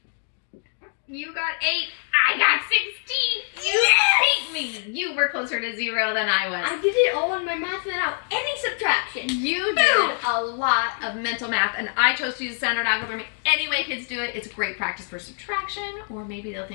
You got 8. I got 16. You beat me. You were closer to 0 than I was. I did it all in my math without any subtraction. You did a lot of mental math, and I chose to use standard algebra. Any way kids do it, it's great practice for subtraction, or maybe they'll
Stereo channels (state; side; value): silent; right; 60 dB below the other